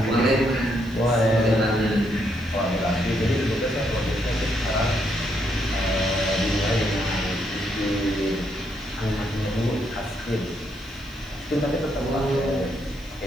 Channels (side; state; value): right; noise; hiss, 27 dB below the sound